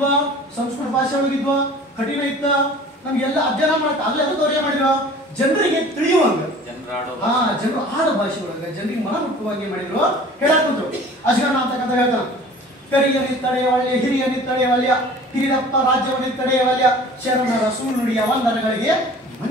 ಸಂಸ್ಕೃತ ಭಾಷೆ ಒಳಗಿದ್ವ ಕಠಿಣ ಇತ್ತ ನಮ್ಗೆಲ್ಲ ಅಧ್ಯಯನ ಮಾಡಕ್ ಆಗ್ಲಿ ಅದಕ್ಕೆ ಅವ್ರು ಏನ್ ಮಾಡಿದ್ರು ಜನರಿಗೆ ತಿಳಿಯುವಂಗ ಜನರು ಆಡ ಭಾಷೆ ಒಳಗ ಜನರಿಗೆ ಮನ ಮುಟ್ಟುವಾಗಿ ಮಾಡಿದ್ರು ಹೇಳಕ್ ಕುಂತ್ರು ಅಜಗಣ್ಣ ಅಂತಕ್ಕಂಥ ಹೇಳ್ತಾನ ಕರಿಯ ನಿತ್ತಡೆಯವಲ್ಯ ಹಿರಿಯ ನಿತ್ತಡೆಯವಲ್ಯ ಹಿರಿದಪ್ಪ ರಾಜ್ಯವ ನಿತ್ತಡೆಯವಲ್ಯ ಶರಣರ ಸುಳ್ಳುಡಿಯ ವಂದನಗಳಿಗೆ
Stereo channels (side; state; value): both; normal; correlation 0.45